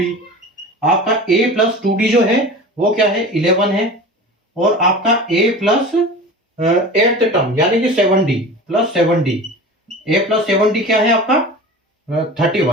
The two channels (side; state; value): both; normal; correlation 0.35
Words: आपका a प्लस 2d जो है वो क्या है, 11 है, और आपका a प्लस 8th टर्म यानी कि 7d plus 7d, a plus 7d क्या है आपका